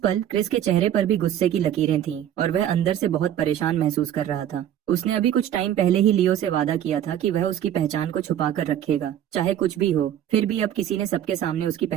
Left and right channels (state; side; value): quieter; left; 10.9 dB